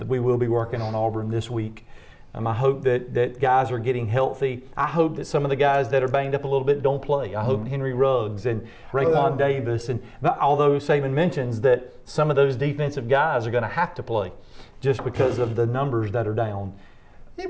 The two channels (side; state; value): both; identical; correlation 1.00